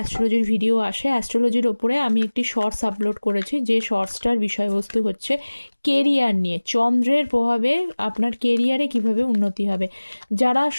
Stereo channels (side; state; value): both; inverted; correlation -1.00